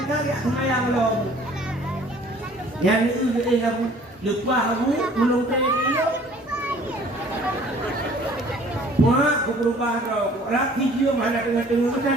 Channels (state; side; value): normal; both; correlation 0.53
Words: tak semayang long yang itu kamu lupa kamu belum dia wah aku berubah roh laki dia mana tengah